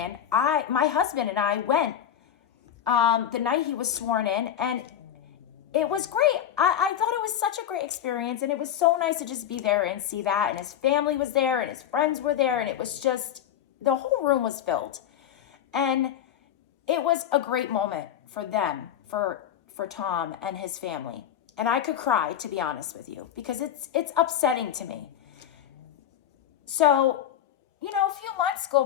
My husband and I went the night he was sworn in, and it was great. I thought it was such a great experience, and it was so nice to just be there and see that, and his family was there, and his friends were there, and it was just, the whole room was filled. And it was a great moment for them, for Tom and his family. And I could cry, to be honest with you, because it's upsetting to me. So, a few months go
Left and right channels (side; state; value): right; quieter; 10.1 dB